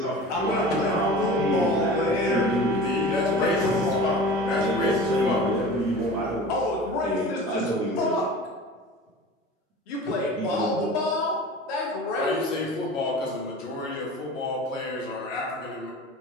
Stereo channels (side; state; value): both; normal; correlation 0.37